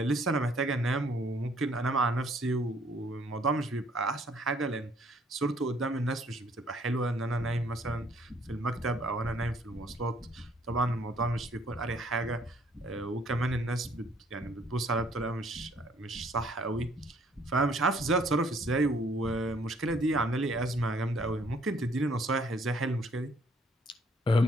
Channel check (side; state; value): both; normal; correlation 0.63